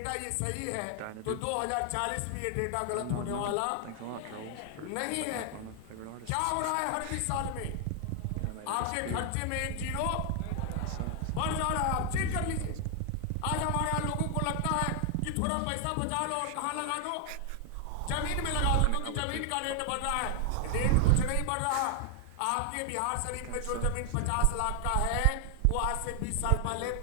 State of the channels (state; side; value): different; both; correlation 0.00